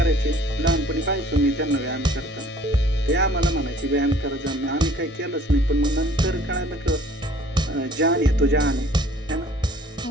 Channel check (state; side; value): normal; both; correlation 0.54